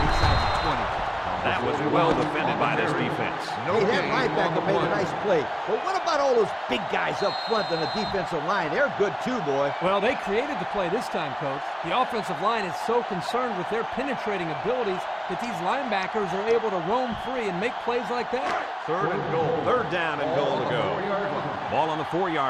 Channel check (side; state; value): both; identical; correlation 1.00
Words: inside the 20. That was well defended by this defense. Hey, that linebacker made a nice play. But what about all those big guys up front on the defensive line? They're good too, boy. Well, they created the play this time, Coach. The offensive line is so concerned with their penetrating abilities that these linebackers are able to roam free and make plays like that. 3rd and goal. 3rd down and goal to go. Ball on the